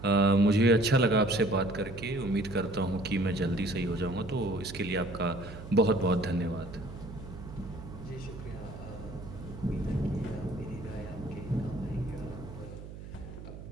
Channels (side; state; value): right; noise; hum, 13 dB below the sound